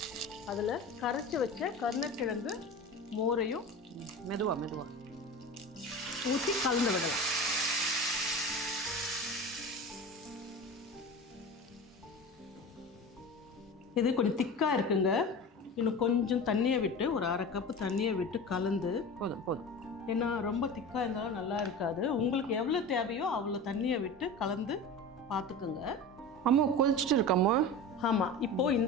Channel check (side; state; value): both; normal; correlation 0.31